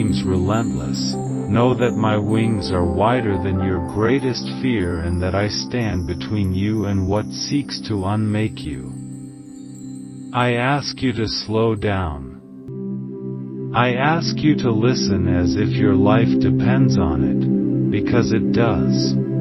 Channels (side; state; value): both; identical; correlation 1.00